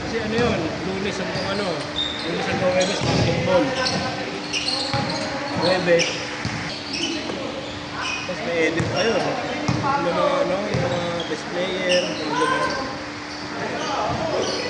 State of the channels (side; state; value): both; identical; correlation 1.00